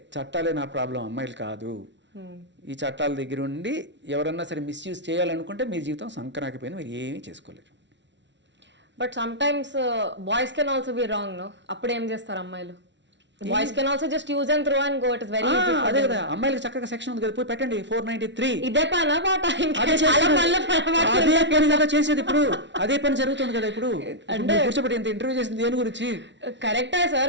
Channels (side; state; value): left; late; 0.52 ms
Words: నా ప్రాబ్లం, అమ్మాయిలు కాదు. ఈ చట్టాల దగ్గర ఉండి ఎవరన్నా సరే మిస్యూజ్ చేయాలనుకుంటే మీ జీవితం సంకరాకిపోయింది, మీరు ఏమీ చేసుకోలేరు. But sometimes boys can also be wrong, no? అప్పుడు ఏం చేస్తారు అమ్మాయిలు? Boys can also just use and throw and go. It is very easy. అదే కదా, అమ్మాయిలకి చక్కగా సెక్షన్ ఉంది కదా, పోయి పెట్టండి 493. ఇదే పనా పాట? అదే పని కదా చేసేది ఇప్పుడు, అదే పని జరుగుతుంది కదా ఇప్పుడు. అంటే కూర్చోబెట్టి ఇంత ఇంటర్వ్యూ చేసింది దేని గురించి? కరెక్టే